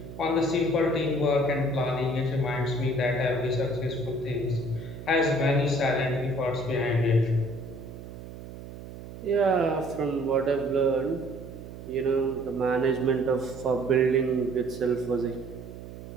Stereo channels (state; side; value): noise; right; hum, 13 dB below the sound